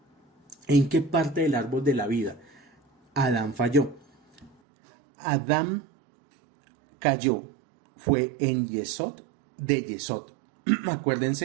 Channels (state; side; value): drops out; left; at 4.5 s